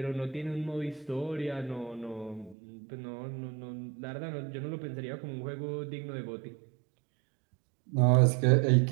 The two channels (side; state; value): left; drops out; at 2.6 s